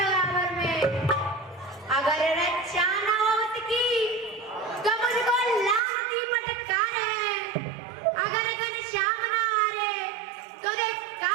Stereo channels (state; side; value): drops out; left; at 5.8 s